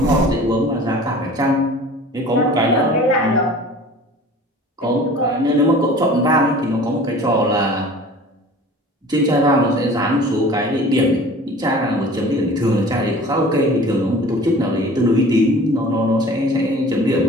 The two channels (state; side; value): normal; both; correlation 0.44